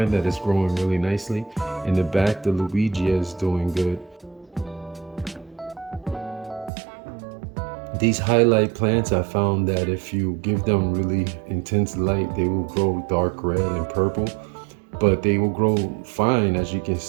that it's growing really nicely. In the back, the Luigia is doing good. These highlight plants, I found that if you give them really intense light, they will grow dark red and purple, but they will grow fine, as you can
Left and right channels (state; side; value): drops out; left; at 6.7 s